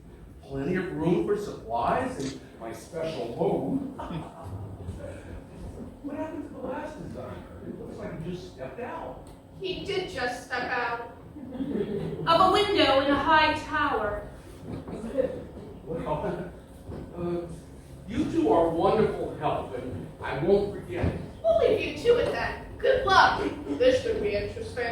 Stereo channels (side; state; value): both; identical; correlation 1.00